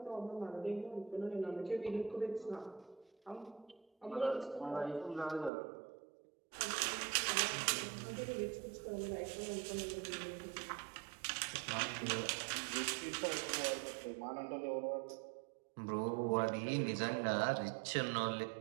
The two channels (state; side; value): drops out; left; at 5.5 s